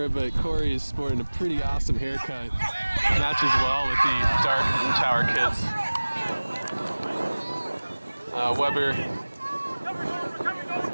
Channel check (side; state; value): both; inverted; correlation -1.00